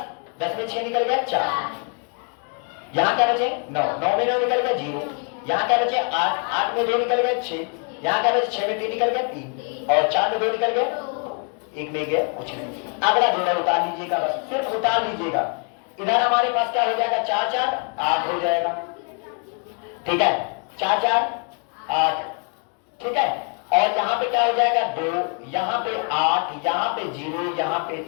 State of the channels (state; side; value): quieter; right; 39.3 dB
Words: 10 में 6 निकल गया 4, यहाँ क्या बचे 9, 9 में 9 निकल गया 0, यहाँ क्या बचे 8, 8 में 2 निकल गया 6, यहाँ क्या बचे 6 में 3 निकल गए 3 और 4 में 2 निकल गए 1 में गए कुछ नहीं। अगला जोड़ा उतार लीजिएगा, बस सिर्फ उतार लीजिएगा। इधर हमारे पास क्या हो जाएगा 4 4 8 हो जाएगा, ठीक है 4 4 8, ठीक है। और यहाँ पे क्या हो जाएगा 2, यहाँ पे 8, यहाँ पे 0, यहाँ पे